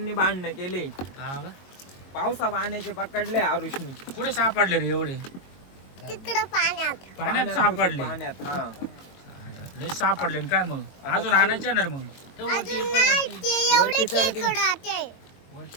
भांडणं केले. हा का? पावसा पाण्याचे पकडले आरुषनी. कुठे सापडले रे एवढे? तिकडं पाण्यात सापडले. पाण्यात हा. लय सापडले ना काय मग? अजून आणायचे ना रे मग? ते वरती एवढे खेकडे आते.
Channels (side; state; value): right; late; 22 ms